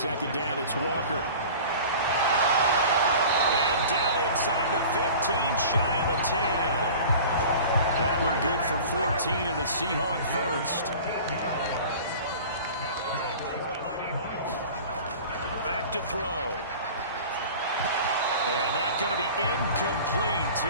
down, it's Walker. And down inside the 15, shy of the 10. That one good for 14 and a Seahawk first. Back to throw. And that's going to be incomplete.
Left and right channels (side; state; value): both; inverted; correlation -0.40